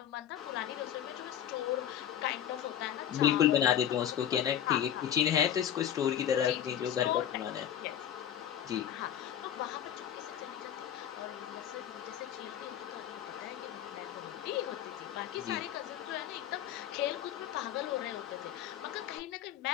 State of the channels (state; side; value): quieter; right; 10.4 dB